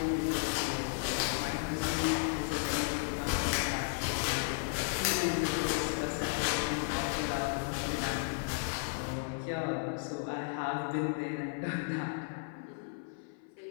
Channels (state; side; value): silent; right; 55 dB below the other